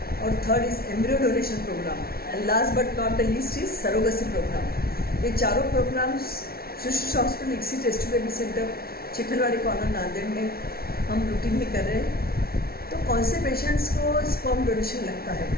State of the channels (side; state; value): right; late; 0.44 ms